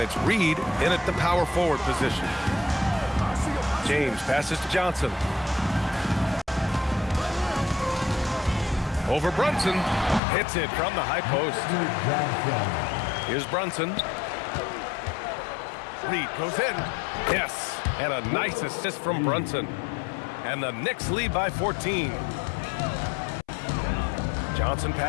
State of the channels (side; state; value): right; drops out; at 10.2 s